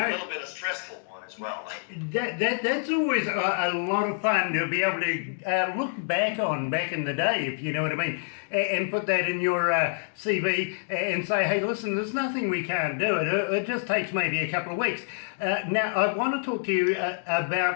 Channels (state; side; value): silent; right; digital silence